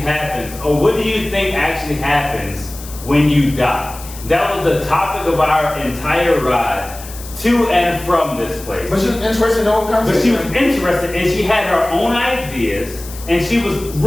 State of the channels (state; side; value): noise; left; hiss, 15 dB below the sound